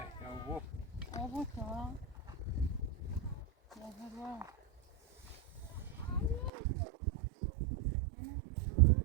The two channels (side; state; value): left; drops out; at 6.5 s